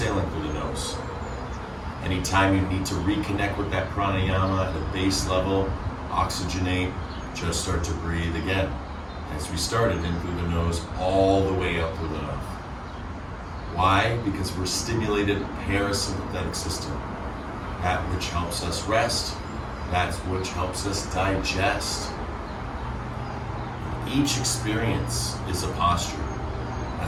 through the nose. Anytime you need to reconnect with that pranayama at the base level, oxygenate, just start to breathe again. As we started in through the nose, all the way up through the mouth. Why? Because we're stimulated parasympathetic system. That which helps us rest, that which helps us digest. Each experience is a posture.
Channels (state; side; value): identical; both; correlation 1.00